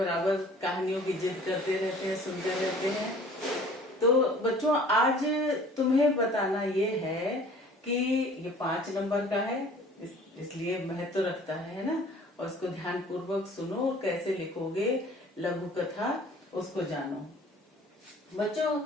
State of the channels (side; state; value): both; normal; correlation 0.50